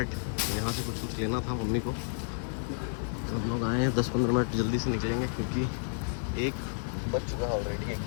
तो यहाँ से कुछ लेना था मम्मी को, तो हम लोग आए हैं। 10-15 मिनट जल्दी से निकलेंगे क्योंकि 1 बज चुका है ऑलरेडी,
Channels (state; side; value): silent; right; 57 dB below the other